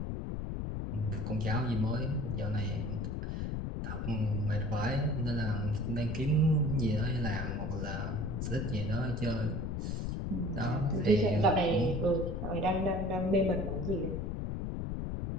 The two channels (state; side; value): noise; left; rumble, 3 dB below the sound